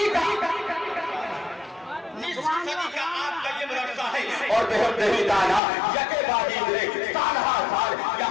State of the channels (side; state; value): right; drops out; at 5.6 s